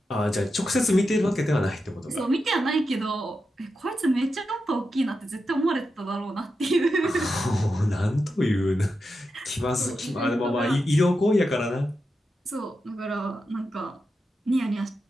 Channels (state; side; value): normal; both; correlation 0.88